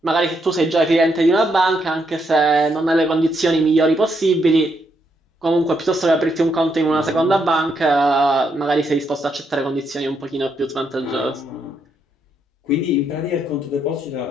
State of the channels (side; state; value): both; normal; correlation 0.77